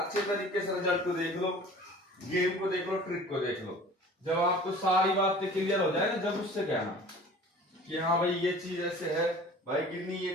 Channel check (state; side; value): normal; both; correlation 0.44